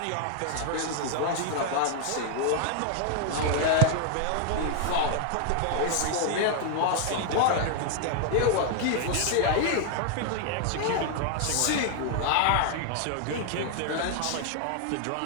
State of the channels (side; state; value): both; different; correlation 0.00